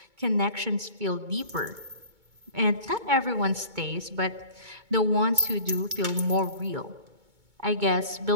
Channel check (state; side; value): late; left; 2.2 ms